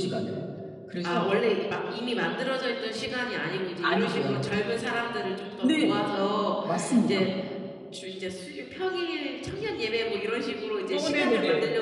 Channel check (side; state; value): both; identical; correlation 1.00